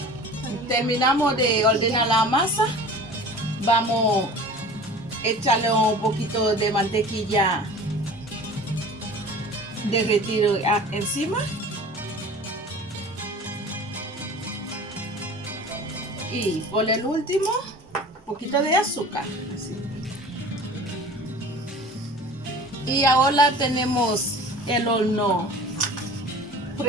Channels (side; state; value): both; normal; correlation 0.41